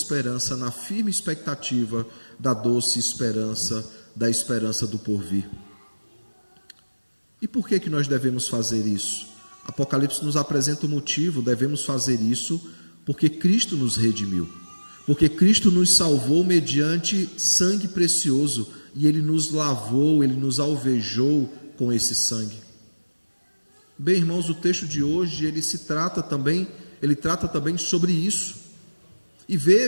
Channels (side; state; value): both; inverted; correlation -1.00